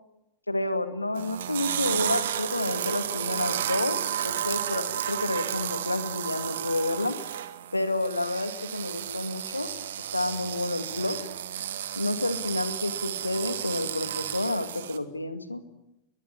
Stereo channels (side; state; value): both; inverted; correlation -0.75